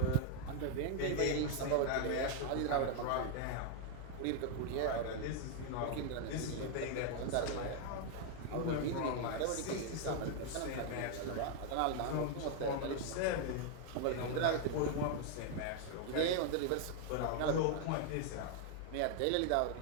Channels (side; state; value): both; different; correlation 0.00